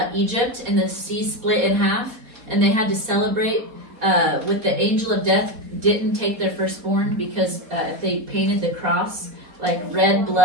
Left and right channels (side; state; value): left; late; 4.2 ms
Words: Egypt and the sea split in half and they had to celebrate with the angel of death didn't take their firstborn because if they painted the cross like red